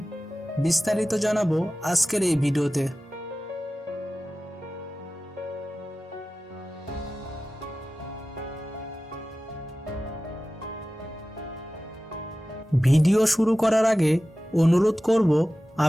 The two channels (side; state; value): both; normal; correlation 0.95